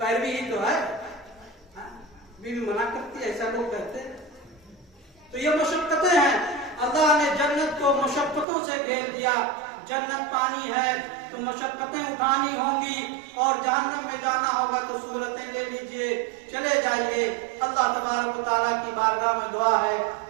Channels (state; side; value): drops out; left; at 8.5 s